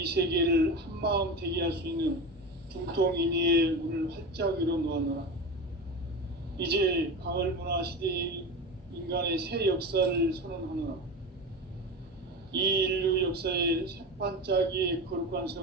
세계를 한마음 되게 할 수 있는 중통인의의 문을 활짝 열어놓았노라. 이제 가을 문화 시대의 인간의 새 역사를 선언하노라. 이 인류 역사의 새반짝이의 거룩한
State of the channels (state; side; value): normal; both; correlation 0.25